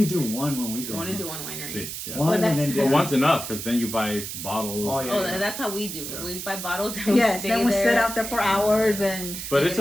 do one when we go. I want to do one winery. See, yeah. One Well, and then that's- Well, dinner. one's enough because then you buy bottles. Oh, yeah. Oh, that's how we do. Yeah. We buy bottles and we Yes, stay then we there. sit out there for hours and. But You it's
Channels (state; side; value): noise; right; hiss, 7 dB below the sound